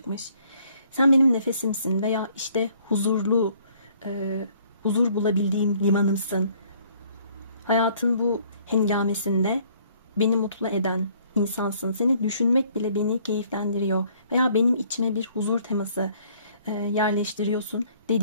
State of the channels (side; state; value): both; inverted; correlation -0.61